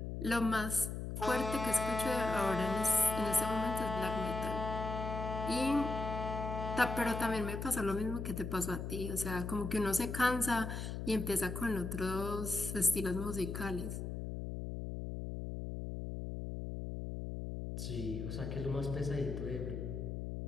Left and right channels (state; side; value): noise; left; hum, 5 dB below the sound